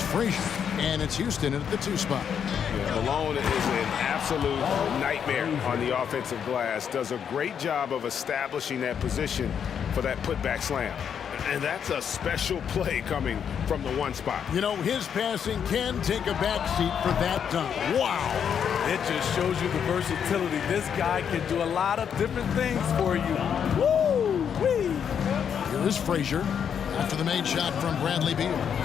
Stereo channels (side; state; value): right; quieter; 7.9 dB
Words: Frazier. And it's Houston at the 2 spot. Malone is an absolute nightmare on the offensive glass. Does a great job of establishing that position for that putback slam. And that's a special play coming from the 1 spot. You know, his passing can take a backseat for that dunk. Wow. It just shows you the versatility. This guy can do a lot of different things for you. Woo-wee. Here is Frazier after the made shot from Bradley Beal.